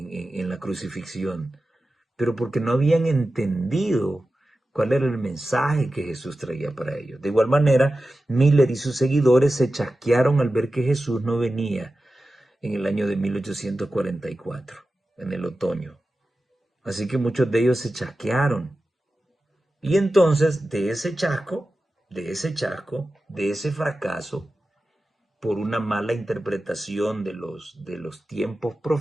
la crucifixión, pero porque no habían entendido cuál era el mensaje que Jesús traía para ellos. De igual manera, Miller y sus seguidores se chasquearon al ver que Jesús no venía en el año de 1844, en el otoño. Así que muchos de ellos se chasquearon. Y entonces, de ese fracaso, por una mala interpretación de los tiempos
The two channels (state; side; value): normal; both; correlation 0.93